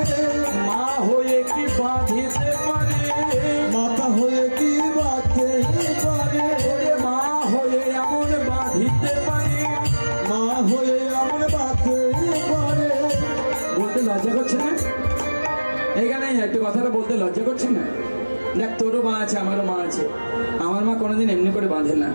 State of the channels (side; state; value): both; inverted; correlation -1.00